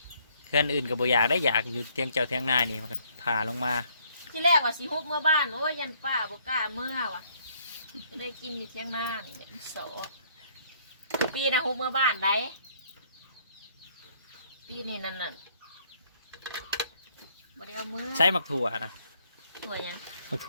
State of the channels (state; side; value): inverted; both; correlation -0.65